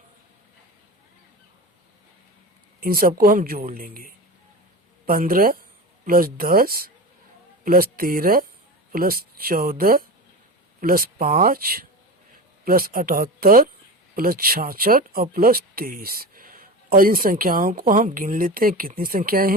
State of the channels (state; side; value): normal; both; correlation 0.27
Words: इन सबको हम जोड़ लेंगे। 15, plus 10 plus 13 plus 14 plus 5 plus 78 plus 66 और प्लस 23। और इन संख्याओं को हम गिन लेते हैं। कितनी संख्याएं